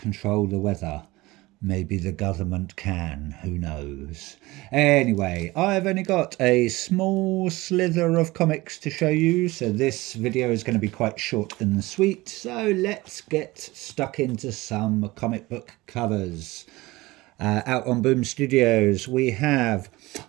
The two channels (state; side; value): quieter; left; 20.5 dB